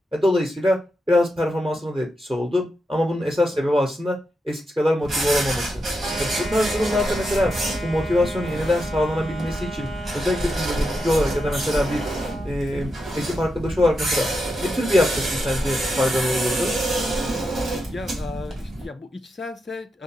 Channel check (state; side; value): normal; both; correlation 0.86